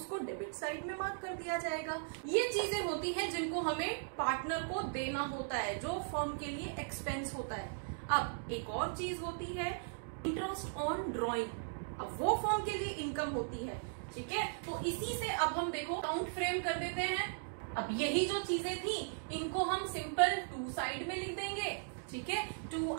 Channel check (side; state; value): left; silent; digital silence